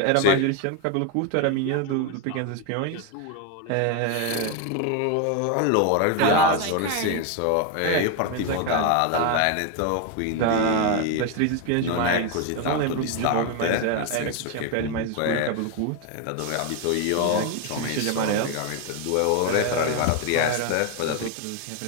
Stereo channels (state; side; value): different; both; correlation 0.01